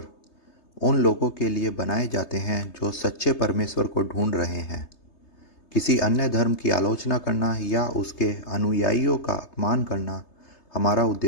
उन लोगों के लिए बनाए जाते हैं जो सच्चे परमेश्वर को ढूंढ रहे हैं। किसी अन्य धर्म की आलोचना करना या उसके अनुयायियों का अपमान करना हमारा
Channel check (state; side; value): late; right; 3.3 ms